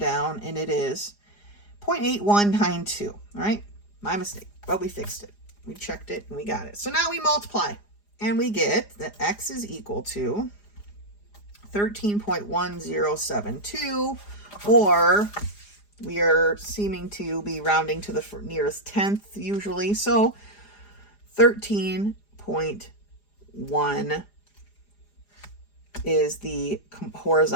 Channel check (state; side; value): late; right; 4.9 ms